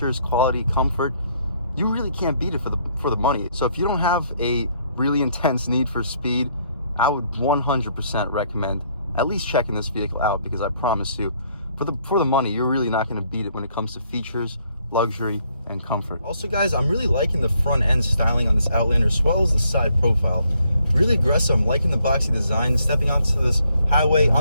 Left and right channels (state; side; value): inverted; both; correlation -0.69